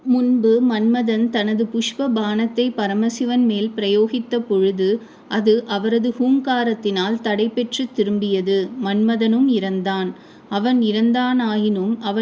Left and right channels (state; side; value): identical; both; correlation 1.00